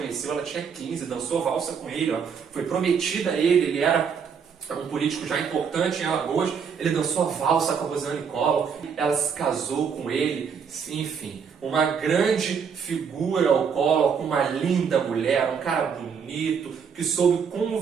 ela tinha 15, dançou valsa com ele, ó, foi prometida a ele era um político já importante em Alagoas, ele dançou a valsa com a Rosiane Collor, ela se casou com ele, enfim, uma grande figura o Collor, com uma linda mulher, um cara bonito, que soube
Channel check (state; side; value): quieter; left; 6.6 dB